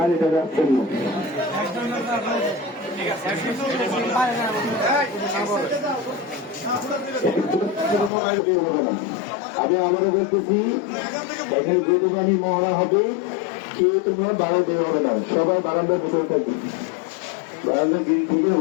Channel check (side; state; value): right; drops out; at 8.1 s